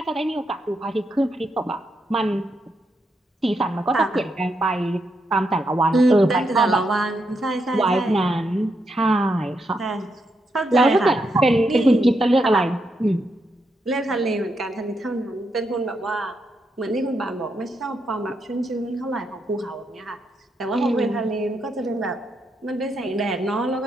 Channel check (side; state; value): both; normal; correlation 0.81